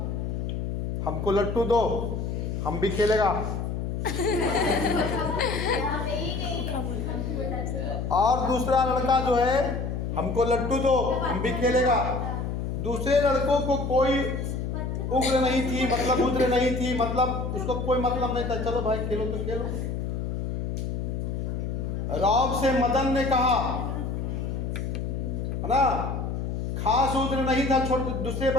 हमको लट्टू दो, हम भी खेलेगा। और दूसरा लड़का जो है, हमको लट्टू दो, हम भी खेलेगा। दूसरे लड़कों को कोई उग्र नहीं थी, मतलब उसको कोई मतलब नहीं था, चलो भाई खेलो तो खेलो। रौब से मदन ने कहा, है ना, खास उग्र नहीं था छोटे दूसरे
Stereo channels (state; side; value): noise; left; hum, 3 dB below the sound